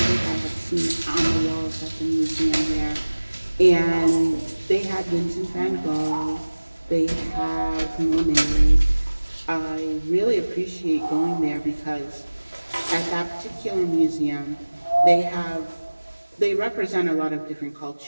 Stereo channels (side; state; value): both; inverted; correlation -1.00